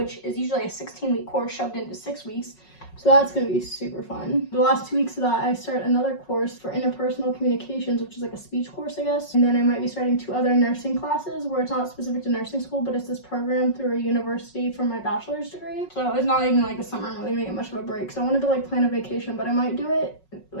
is usually a 16-week course shoved into 6 weeks. So that's going to be super fun. The last 2 weeks of that, I start another course for interpersonal communications, which is like a speech course, I guess. And then I might be starting 2 other nursing classes where it's not specific to nursing school, but it's this program through a university for my bachelor's degree. So it's not even like the summer. I'm really going to get much of a break. So I wanted to like plan a vacation, but I might do it,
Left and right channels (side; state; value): right; late; 5.4 ms